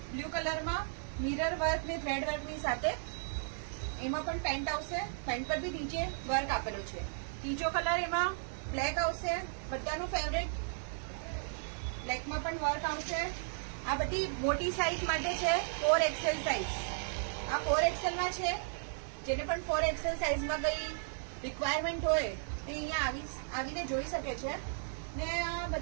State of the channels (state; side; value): silent; left; 54 dB below the other